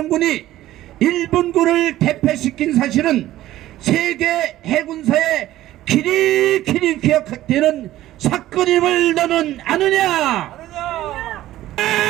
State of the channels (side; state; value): left; quieter; 14.6 dB